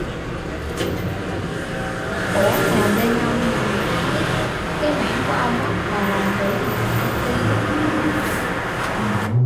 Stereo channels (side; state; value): both; identical; correlation 1.00